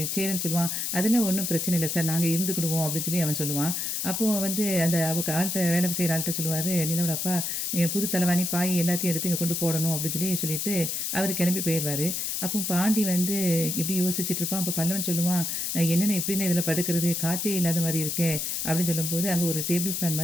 சேரன் சொல்லுவான், அதெல்லாம் ஒன்றும் பிரச்சனை இல்லை சார், நாங்கள் இருந்துக்கிடுவோம் அப்படின்னு சொல்லி அவன் சொல்லுவான். அப்போது வந்து அந்த ஆள்கிட்ட வேலை செய்கிற ஆள்கிட்ட சொல்லுவார் நிலாவோட அப்பா, புது தலைவாணி பாய் எல்லாத்தையும் எடுத்து இங்கே கொண்டு போடணும் அப்படின்னு சொல்லிட்டு அவர் கிளம்பி போயிடுவார். அப்போ பாண்டி வந்து இப்படி யோசிச்சுட்டு இருப்பான். அப்போ பல்லவன் சொல்லுவான், என்னென்ன எப்படின்னு இதில் படுக்கிறது, காற்றே இல்லாத மாதிரி இருக்கே அப்படின்னு சொல்லும்போது அங்கே ஒரு டேபிள் ஃபேன்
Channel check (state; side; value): noise; left; hiss, 1 dB below the sound